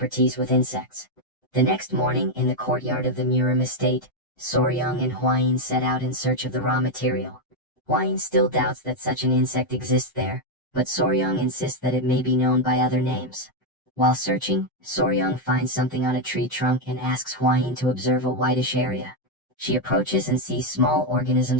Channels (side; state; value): both; normal; correlation 0.02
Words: with insects. The next morning, in the courtyard of the Murim estate, Soryong and Hwayin set out in search of the raw material. Hwayin still doubts that such an insect exists there, but Soryong insists that it may be known by other names. While searching, Soryong finds something on a tree trunk and asks Hwayin to observe a whitish area. She approaches and sees small